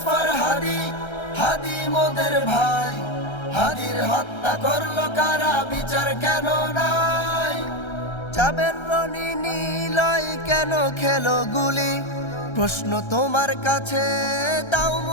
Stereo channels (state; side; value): late; right; 1.3 ms